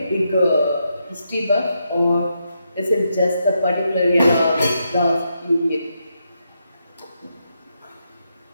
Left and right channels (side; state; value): both; inverted; correlation -0.82